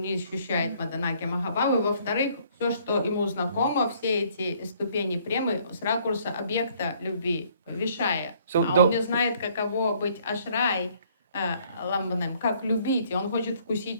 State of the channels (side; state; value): both; inverted; correlation -0.62